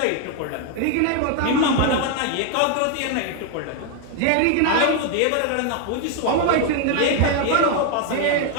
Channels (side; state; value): both; different; correlation 0.01